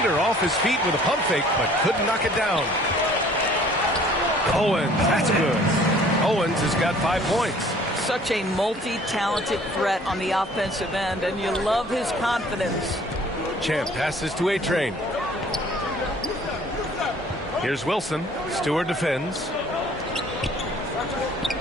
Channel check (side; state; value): both; normal; correlation 0.54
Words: off his feet with a pump fake, but couldn't knock it down. Owens, that's good. Owens has got 5 points. Such a multi-talented threat on the offensive end, and you love his confidence. Champ passes to A-Train. Here's Wilson. Stewart defends.